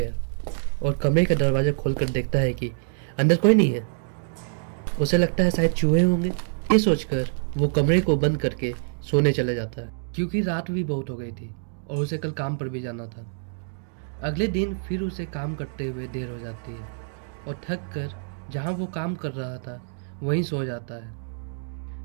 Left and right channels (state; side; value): silent; left; digital silence